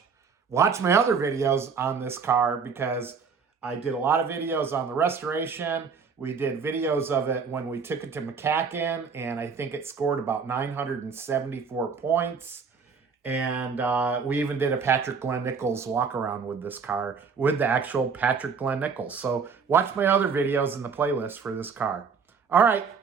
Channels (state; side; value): quieter; left; 5.7 dB